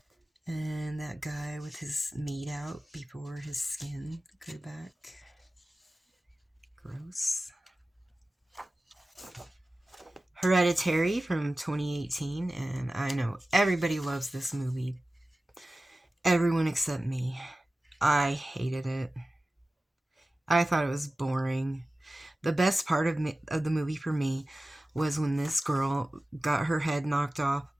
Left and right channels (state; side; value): normal; both; correlation 0.96